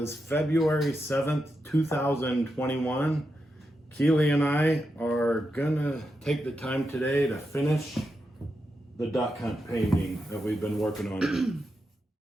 February 7th, 2021. Keelie and I are gonna take the time today to finish the duck hunt painting that we've been working on.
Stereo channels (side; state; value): both; normal; correlation 0.87